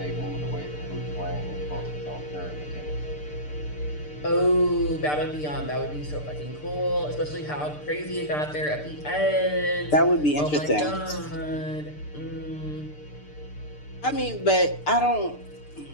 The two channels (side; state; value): right; late; 6.7 ms